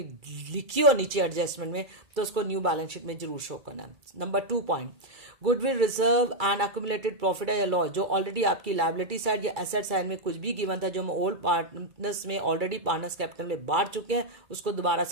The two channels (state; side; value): late; left; 2.3 ms